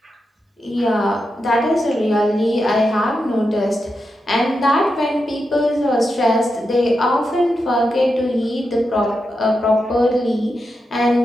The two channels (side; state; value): both; normal; correlation 0.87